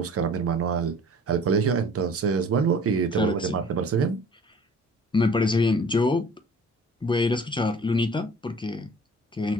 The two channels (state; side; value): normal; both; correlation 0.48